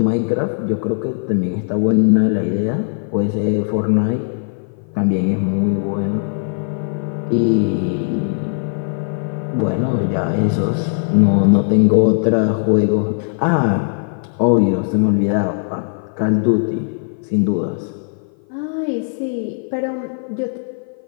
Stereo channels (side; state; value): right; silent; 56 dB below the other